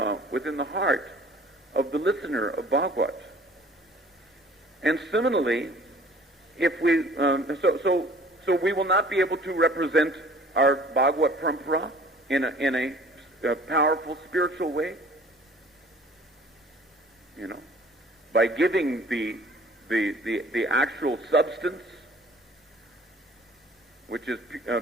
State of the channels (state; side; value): normal; both; correlation 0.51